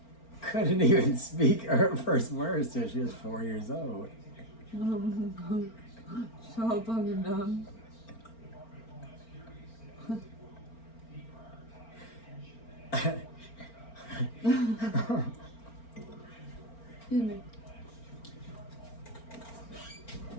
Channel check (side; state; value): right; late; 4.4 ms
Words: couldn't even speak her first words till she was 4 years old. So fucking dumb. Excuse me.